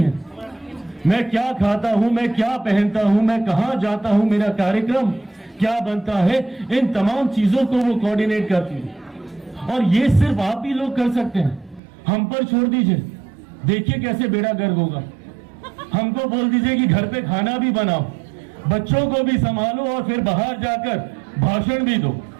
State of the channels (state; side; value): drops out; left; at 11.8 s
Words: मैं क्या खाता हूं, मैं क्या पहनता हूं, मैं कहां जाता हूं, मेरा कार्यक्रम क्या बनता है, इन तमाम चीजों को वो कोऑर्डिनेट करती है। और ये सिर्फ आप ही लोग कर सकते हैं, हम पर छोड़ दीजिए, देखिए कैसे बेड़ा गर्क होगा। हमको बोल दीजिए कि घर पे खाना भी बनाओ, बच्चों को भी संभालो और फिर बाहर जाकर भाषण भी दो